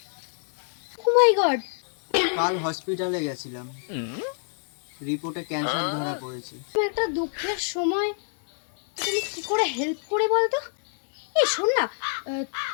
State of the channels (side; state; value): right; silent; 60 dB below the other